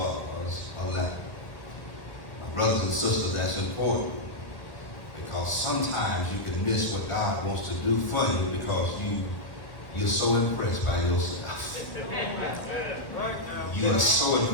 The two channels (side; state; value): right; late; 1.3 ms